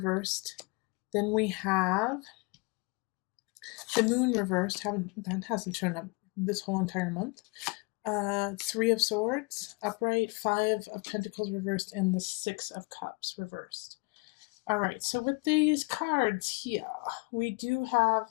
Then we have the Moon reversed. That hasn't shown up this whole entire month. 3 of Swords upright, 5 of Pentacles reversed, and the 6 of Cups reversed. All right, so with these cards here, we do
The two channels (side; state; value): right; quieter; 29.0 dB